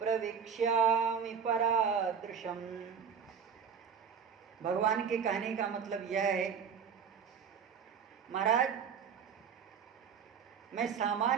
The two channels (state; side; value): quieter; left; 7.0 dB